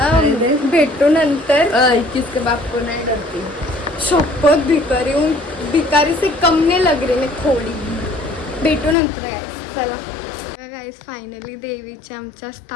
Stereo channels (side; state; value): right; drops out; at 9.0 s